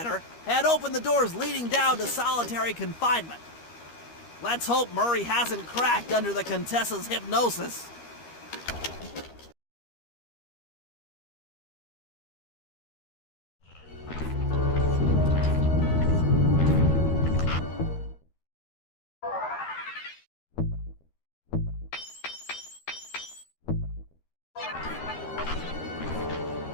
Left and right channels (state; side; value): late; right; 13 ms